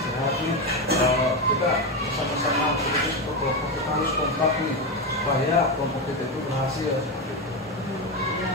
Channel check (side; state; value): both; normal; correlation 0.13